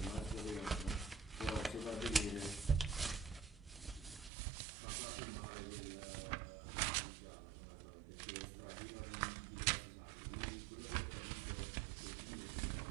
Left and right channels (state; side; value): drops out; left; at 4.3 s